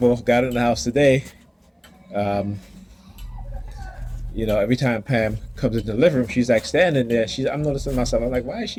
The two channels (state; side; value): identical; both; correlation 1.00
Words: got in the house today. Um, every time Pam comes into the living room, she's like standing there. I'm noticing myself. I'm like, why is